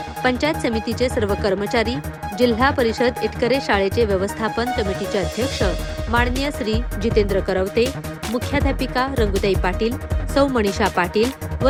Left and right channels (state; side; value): identical; both; correlation 1.00